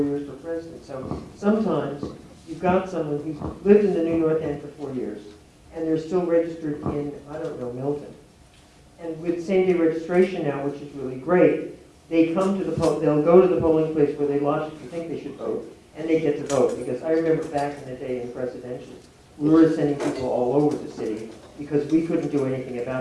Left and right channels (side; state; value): both; identical; correlation 1.00